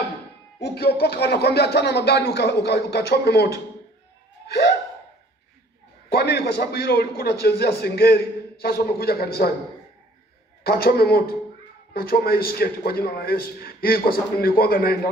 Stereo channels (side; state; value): both; normal; correlation 0.55